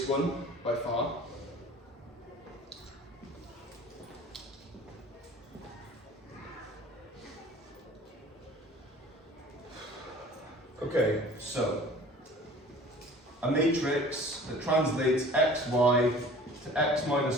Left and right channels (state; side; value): normal; both; correlation 0.45